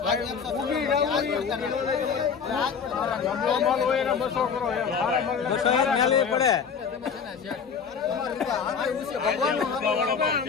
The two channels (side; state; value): right; quieter; 6.4 dB